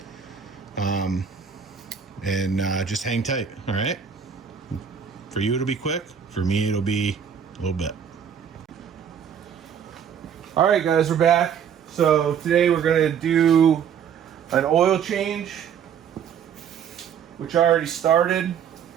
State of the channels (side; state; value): left; quieter; 7.8 dB